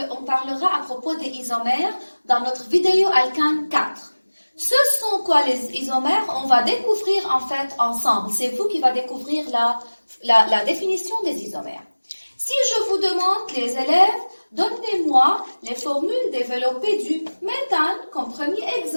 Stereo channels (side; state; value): both; inverted; correlation -1.00